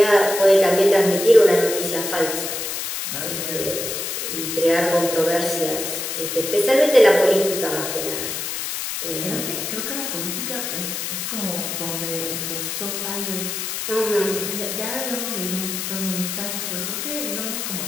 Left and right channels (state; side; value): noise; left; hiss, 4 dB below the sound